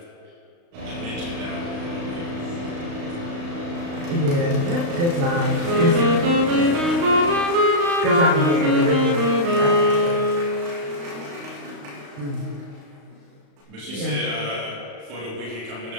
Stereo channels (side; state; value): left; late; 35 ms